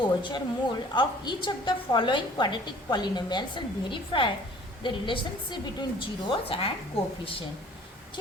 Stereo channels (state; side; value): normal; both; correlation 0.52